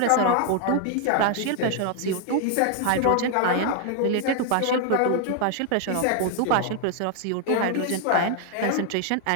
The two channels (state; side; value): different; both; correlation 0.00